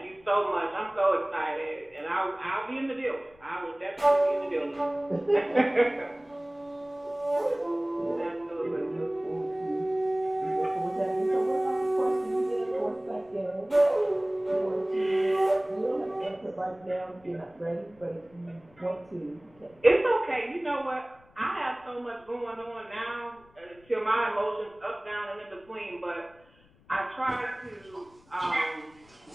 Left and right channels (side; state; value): left; noise; rumble, 29 dB below the sound